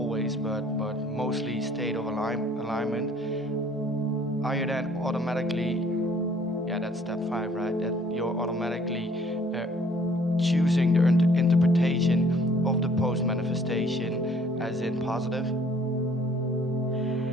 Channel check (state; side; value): normal; both; correlation 0.58